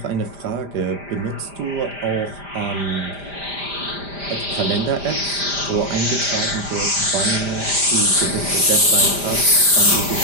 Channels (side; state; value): left; late; 5.0 ms